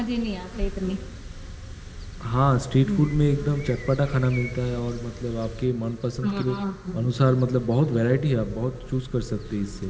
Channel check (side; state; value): both; identical; correlation 1.00